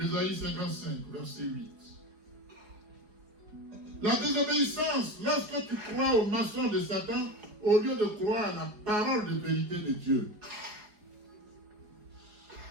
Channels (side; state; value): left; late; 4.8 ms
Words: 55, verset 8. La désobéissance, lorsque tu crois au maçon de Satan, au lieu de croire à la parole de vérité de Dieu.